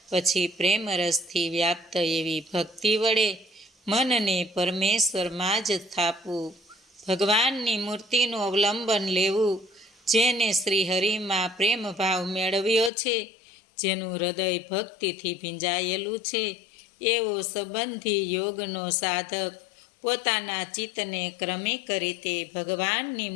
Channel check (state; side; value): drops out; right; at 12.9 s